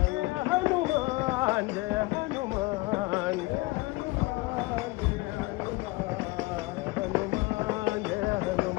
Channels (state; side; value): quieter; right; 22.1 dB